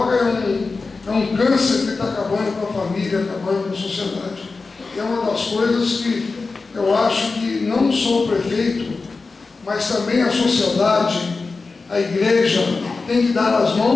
é um câncer que está acabando com a família, acabando com a sociedade. É uma das coisas que eu acho que não só o prefeito, mas também a sociedade, a igreja, tem que dar as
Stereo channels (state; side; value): quieter; right; 4.0 dB